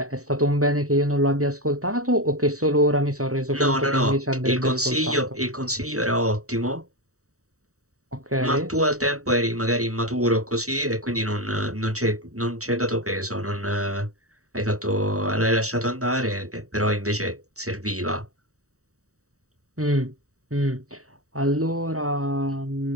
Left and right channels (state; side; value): late; left; 0.65 ms